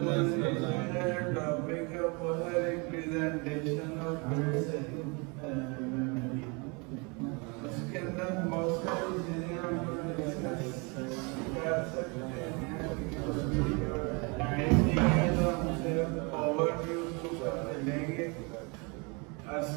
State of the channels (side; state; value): left; quieter; 30.8 dB